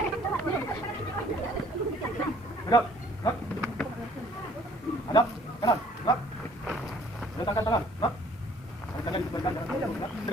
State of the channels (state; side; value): normal; both; correlation 0.57